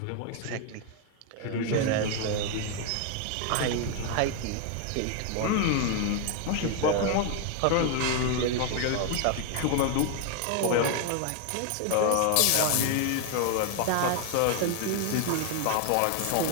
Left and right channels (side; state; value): both; different; correlation 0.00